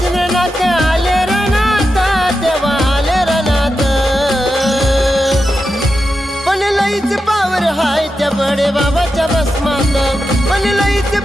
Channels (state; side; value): normal; both; correlation 0.89